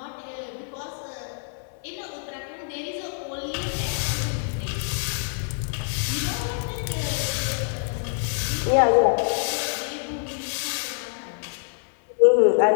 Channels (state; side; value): silent; right; 61 dB below the other